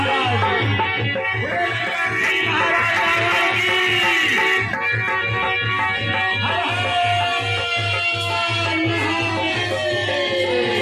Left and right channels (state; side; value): identical; both; correlation 1.00